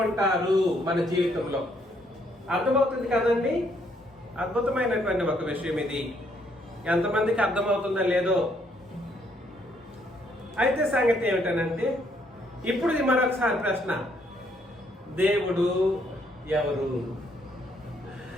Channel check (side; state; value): both; normal; correlation 0.70